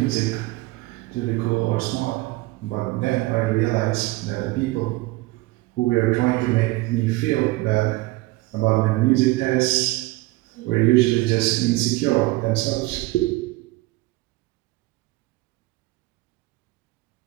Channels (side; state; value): left; quieter; 20.5 dB